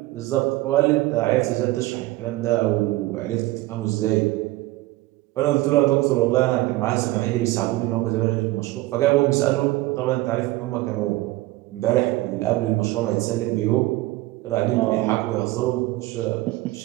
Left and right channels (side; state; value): left; quieter; 18.5 dB